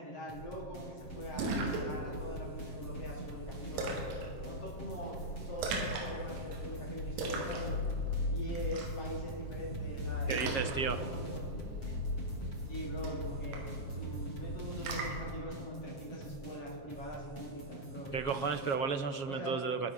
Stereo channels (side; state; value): right; late; 7.4 ms